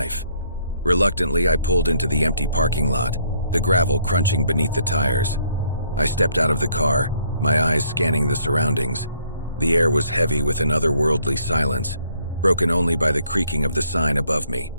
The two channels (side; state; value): both; inverted; correlation -0.67